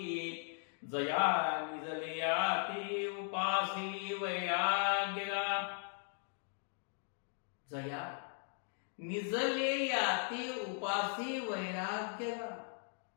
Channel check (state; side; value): silent; right; 52 dB below the other